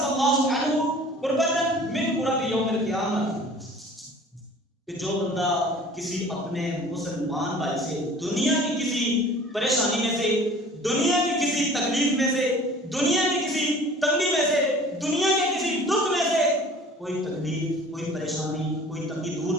اللہ عنہ قربۃ من قرب یوم القیامت، کہ جو بندہ کسی اپنے مسلمان بھائی سے دنیا کی کسی پریشانی میں سے، دنیا کی کسی تکلیف میں سے، دنیا کی کسی تنگی میں سے، دنیا کے کسی دکھ میں سے کوئی تکلیف، کوئی پریشانی، کوئی تنگی دور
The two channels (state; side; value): normal; both; correlation 0.47